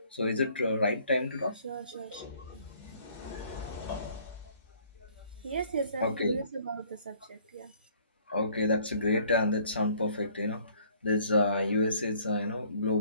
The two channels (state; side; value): inverted; both; correlation -0.58